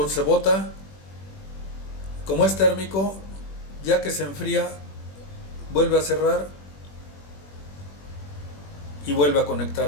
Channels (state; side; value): late; right; 21 ms